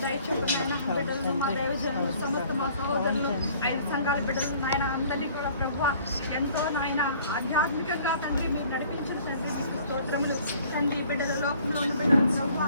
దయ చొప్పున నాయన బిడ్డలను, మా దైవజనులు, సమస్త మా సహోదరులు, 5 సంఘాల బిడ్డలు నాయన అందరినీ కూడా ప్రభువా ఎంతో నాయన ఆధ్యాత్మికంగా తండ్రి మీరు నడిపించిన తండ్రి మీకు స్తోత్రములు తండ్రి. బిడ్డల లోకంలో ఉన్న బిడ్డలు ప్రభువా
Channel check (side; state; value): both; inverted; correlation -0.55